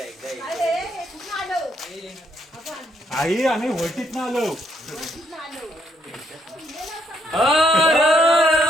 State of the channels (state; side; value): normal; both; correlation 0.73